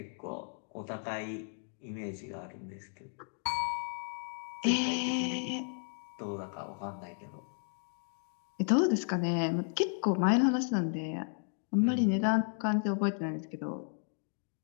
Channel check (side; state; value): right; silent; 55 dB below the other